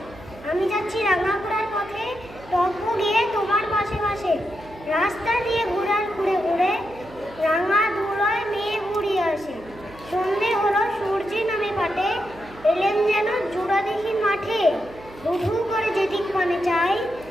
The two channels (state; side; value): noise; right; hum, 19 dB below the sound